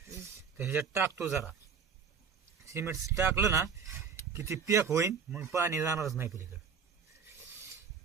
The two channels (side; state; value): left; quieter; 6.2 dB